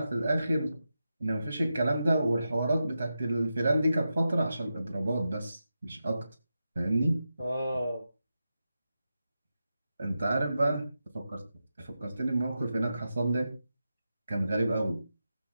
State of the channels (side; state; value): both; inverted; correlation -0.89